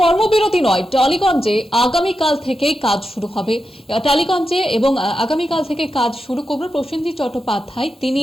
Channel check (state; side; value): normal; both; correlation 0.89